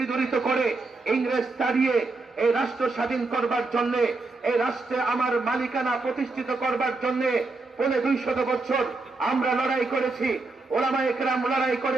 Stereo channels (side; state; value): left; quieter; 3.6 dB